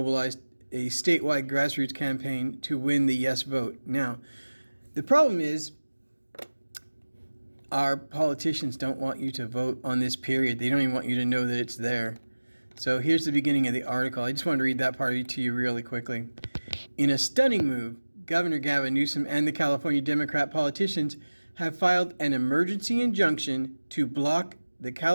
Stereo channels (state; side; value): inverted; both; correlation -1.00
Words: a statewide grassroots campaign to win the yes vote. Now, the problem is our politicians don't want you to vote on this period. They don't even want you to know that it's there. So here's the beginning of the article. I just want to read that part to you really quickly. In a stunning move, Governor Gavin Newsom and the California Democrat politicians have filed an emergency injunction to block the